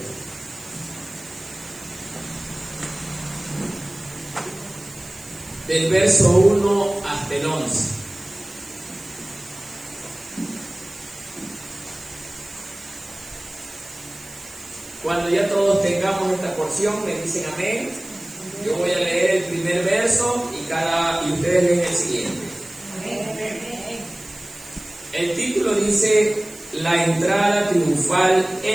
del verso 1 hasta el 11. Cuando ya todos tengamos esta porción, me dicen amén. Yo voy a leer el primer verso y ustedes leen el siguiente. El título dice: La entrada triunfal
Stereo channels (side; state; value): right; noise; hiss, 19 dB below the sound